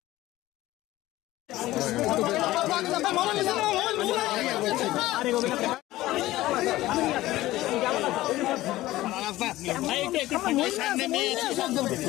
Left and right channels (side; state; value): right; quieter; 16.6 dB